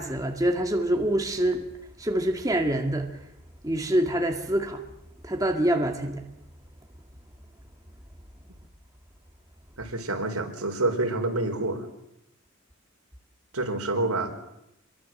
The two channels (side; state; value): both; normal; correlation 0.48